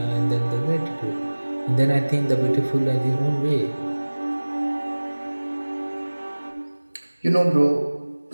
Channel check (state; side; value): inverted; both; correlation -1.00